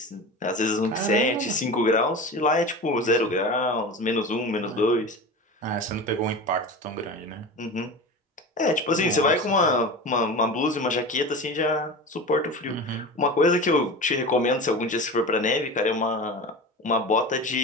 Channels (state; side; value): normal; both; correlation 0.30